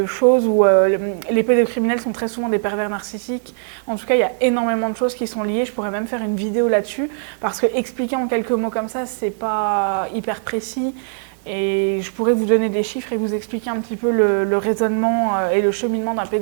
choses où les pédocriminels sont très souvent des pervers narcissiques. En tout cas, il y a énormément de choses qui sont liées. Je pourrais même faire une vidéo là-dessus, parce que expliquer en quelques mots comme ça, c'est pas hyper précis. Et je pourrais vous donner des chiffres et vous expliquer un petit peu le raisonnement et le cheminement d'un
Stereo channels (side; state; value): left; silent; 66 dB below the other